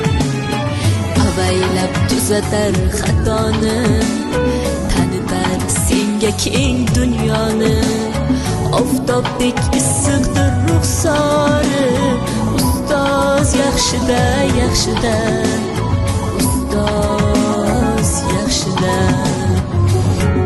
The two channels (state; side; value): identical; both; correlation 1.00